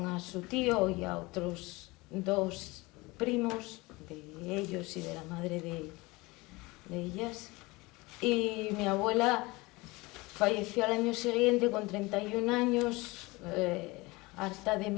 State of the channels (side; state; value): right; quieter; 23.0 dB